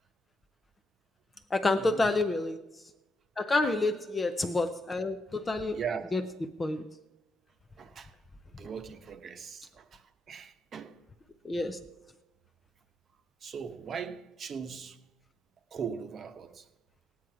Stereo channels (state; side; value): normal; both; correlation 0.82